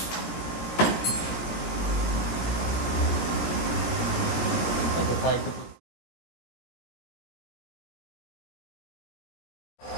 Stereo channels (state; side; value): late; right; 17 ms